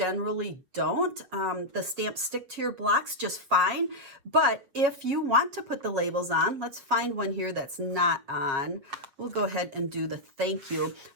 don't. The stamps stick to your blocks just fine. But if you want to put the labels on, let's find one here that's not on. We'll go ahead and do the thank you.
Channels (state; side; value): late; left; 7.3 ms